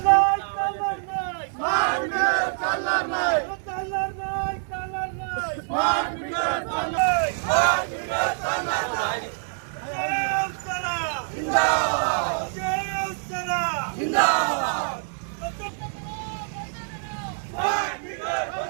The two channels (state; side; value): silent; left; digital silence